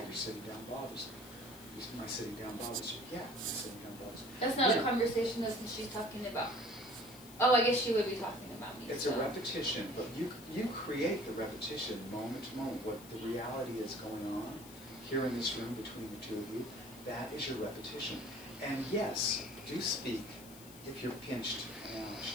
your sitting down bothers me." "My sitting down bothers you." "Yeah, my sitting down bothers me." that's not a conversation though, since she's talking about Oh, I guess she would be talking about me. It's so. a repetition, but you create the repetition moment to moment. What the reality is going on here in this room between the two of you, that is your repetition. And yes, do speak if you're pinched and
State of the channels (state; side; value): noise; left; hiss, 19 dB below the sound